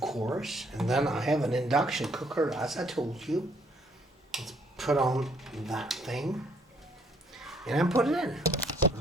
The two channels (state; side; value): normal; both; correlation 0.66